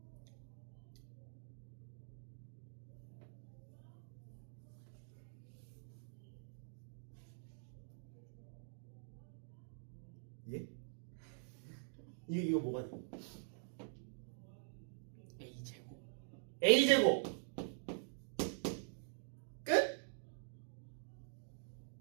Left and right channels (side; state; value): left; silent; digital silence